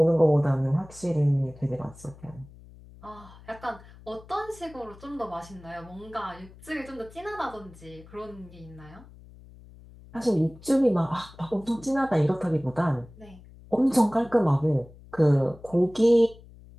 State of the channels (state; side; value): noise; left; hum, 21 dB below the sound